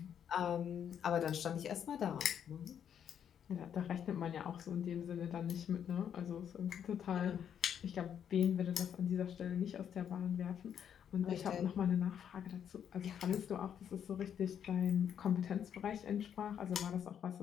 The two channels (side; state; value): right; quieter; 8.7 dB